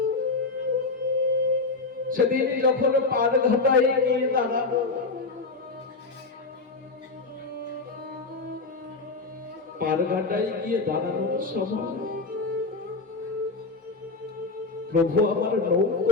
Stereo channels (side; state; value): right; quieter; 3.8 dB